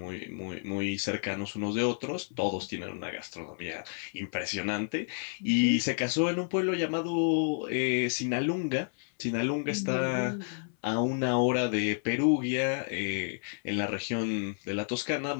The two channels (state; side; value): silent; right; 57 dB below the other